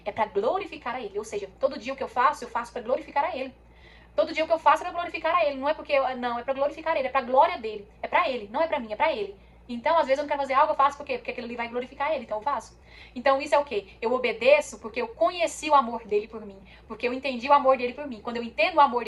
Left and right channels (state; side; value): identical; both; correlation 1.00